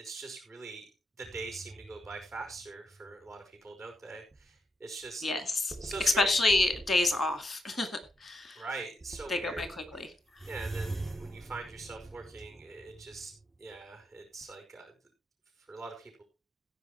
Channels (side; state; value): both; normal; correlation 0.83